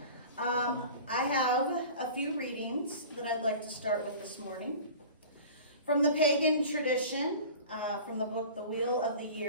I have a few readings that I'd like to start with this morning. From the pagan tradition, from the book The Wheel of the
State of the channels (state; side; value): inverted; both; correlation -0.40